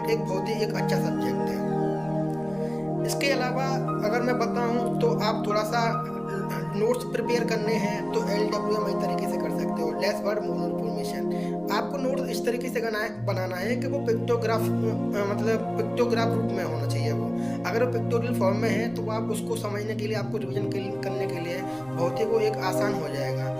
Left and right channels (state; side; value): noise; left; rumble, 25 dB below the sound